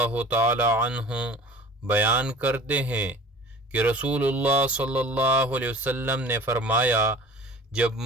تعالی عنہ بیان کرتے ہیں کہ رسول اللہ صلی اللہ علیہ وسلم نے فرمایا، جب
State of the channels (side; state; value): both; normal; correlation 0.44